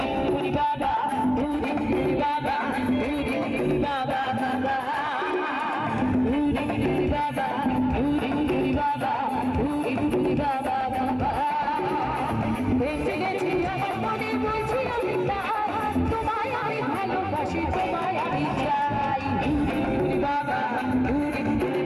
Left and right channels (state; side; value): identical; both; correlation 1.00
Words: पूरी बाबा पूरी बाबा पूरी बाबा बाबा पूरी बाबा पूरी बाबा पूरी बाबा बाबा বেঁচে গেছি আমার মনে বলছি আমি তোমায় আমি ভালোবাসি তোমায় আমি চাই पूरी बाबा पूरी